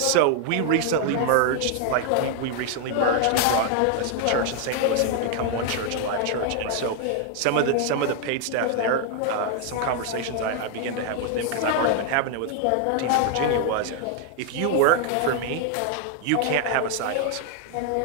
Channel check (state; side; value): different; both; correlation 0.00